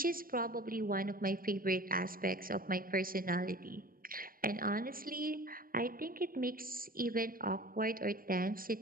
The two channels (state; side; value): late; left; 0.41 ms